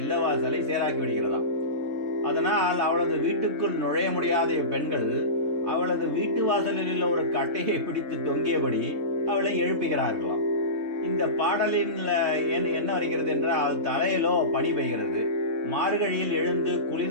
சேராக்கி விடுகிறதாம். அதனால் அவளது வீட்டுக்குள் நுழைய முடியாத பெண்கள் அவளது வீட்டு வாசலில் உள்ள ஒரு கட்டையை பிடித்து தொங்கியபடி அவளை எழுப்புகிறார்களாம். இந்த பாடலின் என்ன வருகிறது என்றால், தலையிலோ பனி பெய்கிறது. மார்கழியில் எழுந்து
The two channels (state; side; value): late; left; 3.7 ms